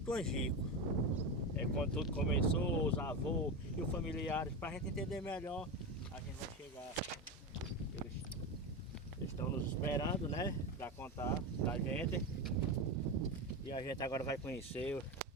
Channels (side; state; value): both; normal; correlation 0.18